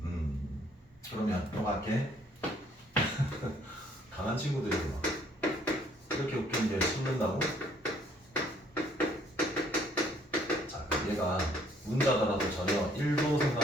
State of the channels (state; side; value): normal; both; correlation 0.63